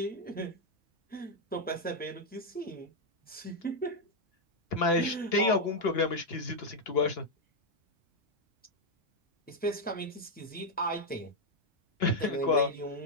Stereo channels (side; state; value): both; normal; correlation 0.01